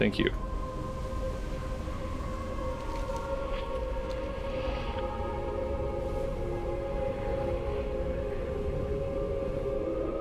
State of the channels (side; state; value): both; identical; correlation 1.00